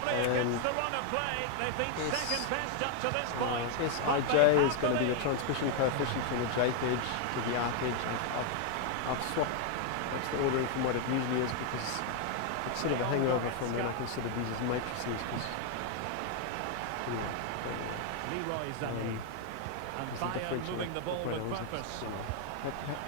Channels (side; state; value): both; different; correlation 0.00